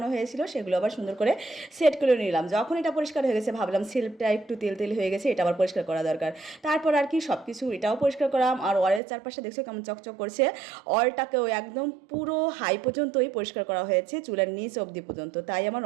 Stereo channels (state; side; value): drops out; left; at 9.0 s